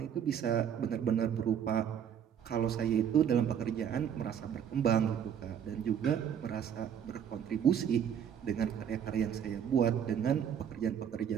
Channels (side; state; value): left; quieter; 8.6 dB